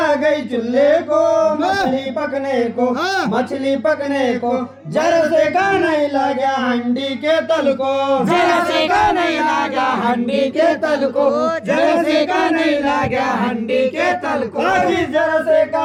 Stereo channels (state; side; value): identical; both; correlation 1.00